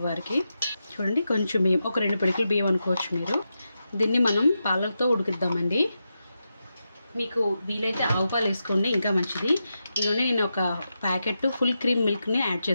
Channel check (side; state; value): both; inverted; correlation -0.88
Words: చూడండి కొంచెం బియ్యం, ఒక 2 పిడికిల బియ్యం అనుకోవచ్చు మీరు. దీన్ని మనం పాలతో ఉడికిద్దామండి. మీకు వీలైతే ఆవు పాలు వేసుకోండి, ఇంకా మంచిది. ఇదిగోండి నేను ఒక ప్యాకెట్ ఫుల్ క్రీమ్ మిల్క్ని యాడ్